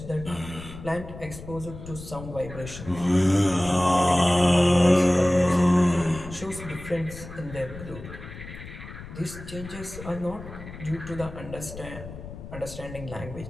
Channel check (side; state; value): left; noise; rumble, 13 dB below the sound